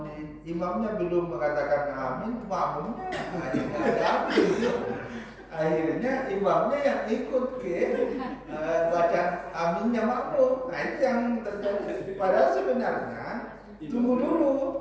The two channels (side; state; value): both; identical; correlation 1.00